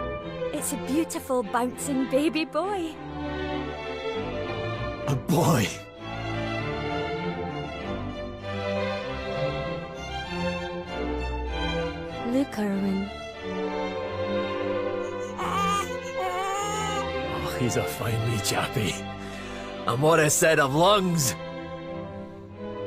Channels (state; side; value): identical; both; correlation 1.00